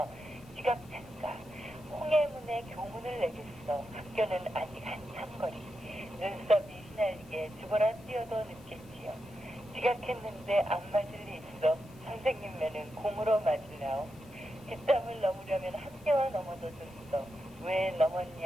지각한가. 홍해문에 교문을 내겠어. 학교는 아직 한참 거리. 눈썹이 휘날리게 죽어라 뛰어도 늦겠지요. 지각했는데 안 맞을 리 있어. 선생님매는 공으로 맞으려오. 뒷담을 넘으려면 학교와 넘어도 줬어. 왜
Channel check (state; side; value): noise; left; hiss, 27 dB below the sound